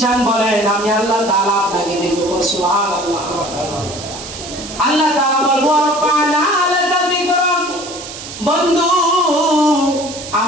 বলেন, আমি আল্লাহ তাআলা আপনাকে দেব। সুবহানাল্লাহ। আল্লাহ তাআলা বলবো রব্বানা লাকা যিকরাক, বন্ধু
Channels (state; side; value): noise; right; hiss, 11 dB below the sound